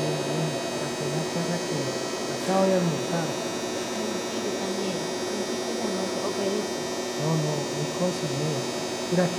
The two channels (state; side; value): identical; both; correlation 1.00